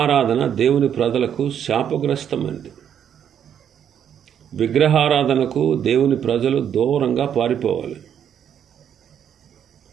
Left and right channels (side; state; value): left; quieter; 8.9 dB